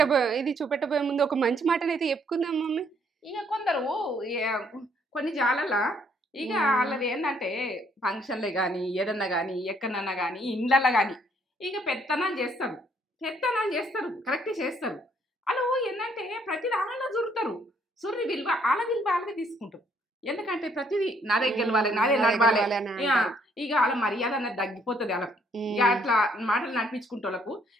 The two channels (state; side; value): normal; both; correlation 0.67